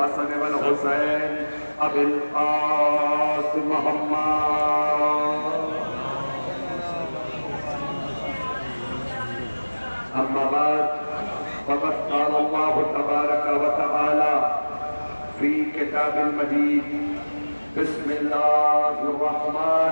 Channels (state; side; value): inverted; both; correlation -1.00